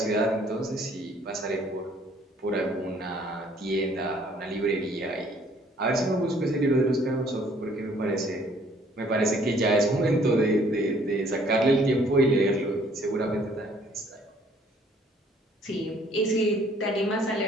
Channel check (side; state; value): both; normal; correlation 0.60